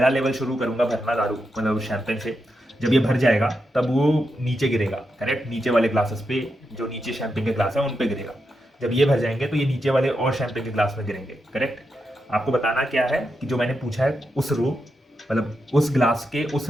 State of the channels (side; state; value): both; normal; correlation 0.86